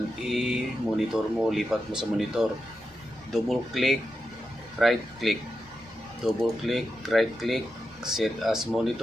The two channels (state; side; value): normal; both; correlation 0.88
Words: i-monitor mo, lipat mo sa monitor. Double click, right click. Double click, right click, set as